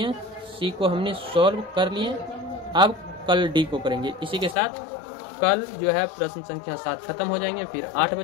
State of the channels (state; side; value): drops out; right; at 4.5 s